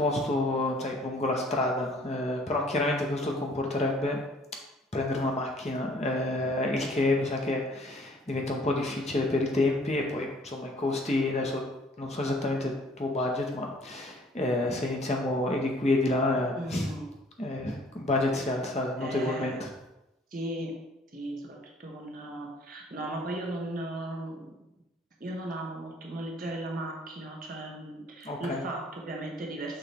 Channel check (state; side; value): normal; both; correlation 0.57